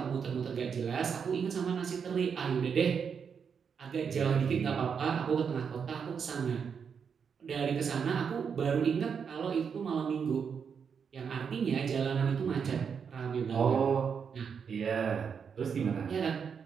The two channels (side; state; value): left; quieter; 6.6 dB